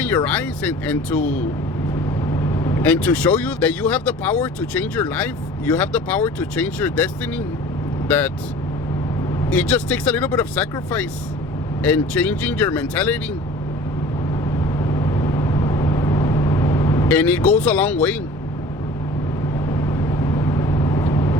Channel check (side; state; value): both; normal; correlation 0.44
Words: your eyes and to show you that you have the power to change your life. You have the power to change your destiny. That it just takes a little bit of sacrifice and changing your mentality. And it goes a long way.